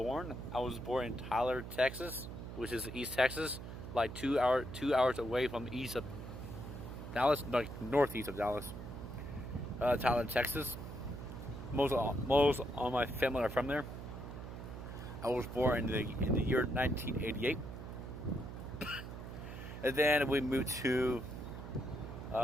in Tyler, Texas, which is East Texas, like 2 hours away from east of Dallas, like northeast of Dallas. Tyler, Texas. Most all my family are from there. I was born in the year 1988, and then we moved to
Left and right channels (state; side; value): noise; right; hum, 9 dB below the sound